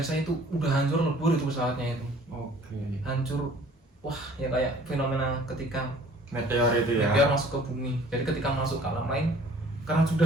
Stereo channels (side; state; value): both; normal; correlation 0.53